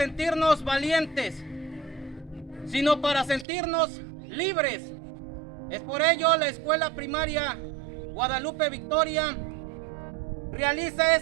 valientes, sino para sentirnos libres. Es por ello la Escuela Primaria Guadalupe Victoria realiza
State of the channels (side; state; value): left; drops out; at 3.5 s